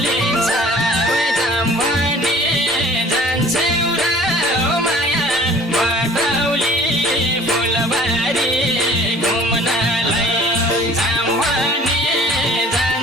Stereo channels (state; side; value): normal; both; correlation 0.50